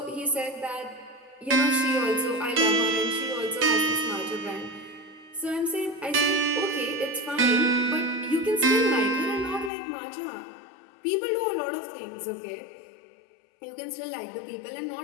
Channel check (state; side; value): drops out; right; at 9.7 s